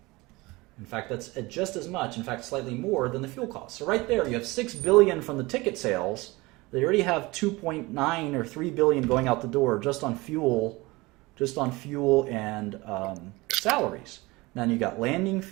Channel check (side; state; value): left; quieter; 22.3 dB